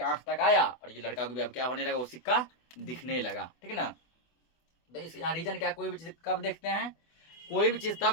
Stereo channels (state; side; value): late; right; 24 ms